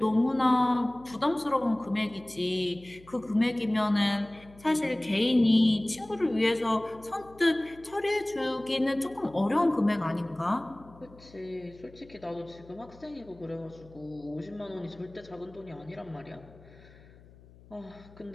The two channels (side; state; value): left; noise; hum, 23 dB below the sound